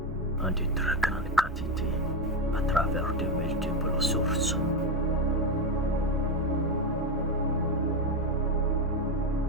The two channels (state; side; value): normal; both; correlation 0.10